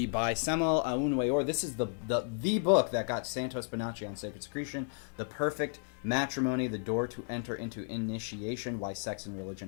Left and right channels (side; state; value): right; silent; 56 dB below the other